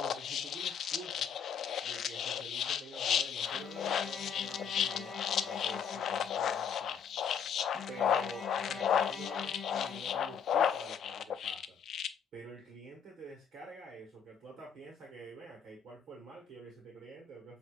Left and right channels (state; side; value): quieter; right; 7.4 dB